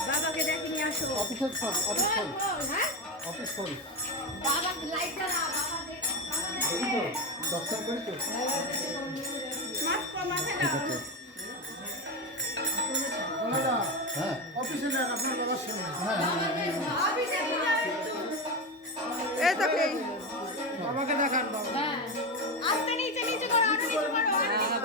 বাবাকে ডেকে নিয়ে আসো। অফিস করি বাবা লাইট জ্বালা, দর্শন করি তো হ্যাঁ অফিসে নেন আপনার বাবার সামনে। এই তো কি বাবাকে দেখান বাবা। আস্তে নিচে নিচে করো, আরো নিচে করো, আরো নিচে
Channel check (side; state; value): both; normal; correlation 0.16